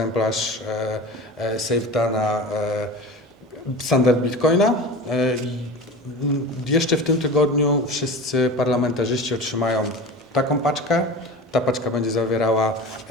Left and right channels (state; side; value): normal; both; correlation 0.32